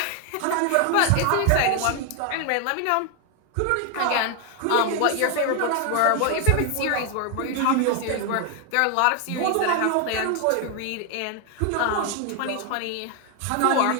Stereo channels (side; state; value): both; different; correlation 0.01